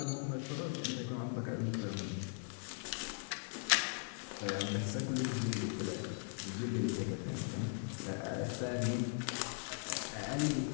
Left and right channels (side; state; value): right; silent; 51 dB below the other